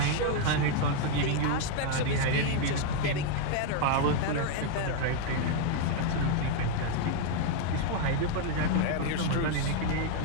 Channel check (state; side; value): different; both; correlation 0.00